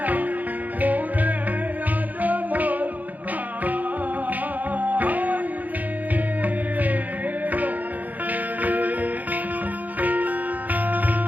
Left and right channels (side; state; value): left; late; 0.080 ms